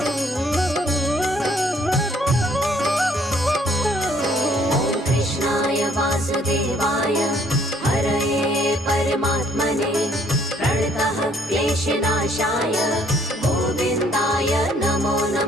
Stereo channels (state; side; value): normal; both; correlation 0.63